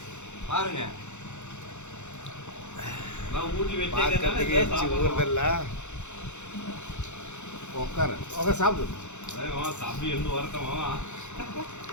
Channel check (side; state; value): right; late; 0.83 ms